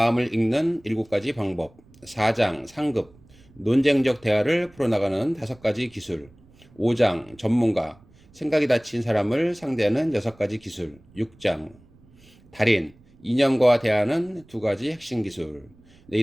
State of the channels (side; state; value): right; noise; rumble, 28 dB below the sound